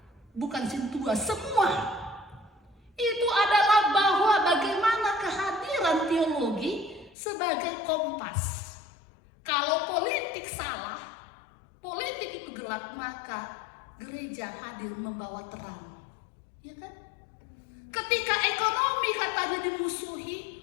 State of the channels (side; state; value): right; drops out; at 7.2 s